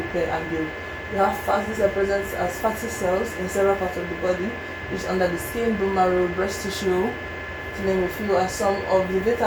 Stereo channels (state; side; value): identical; both; correlation 1.00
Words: and build. You have fats. These are present as fatty cells in several parts of the body, which is under the skin, bone marrow, breast tissue, to name a few. And some of the